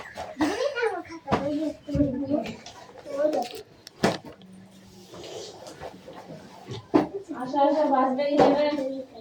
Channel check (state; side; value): identical; both; correlation 1.00